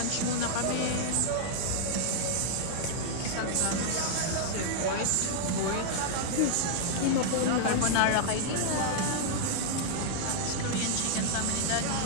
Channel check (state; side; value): different; both; correlation -0.01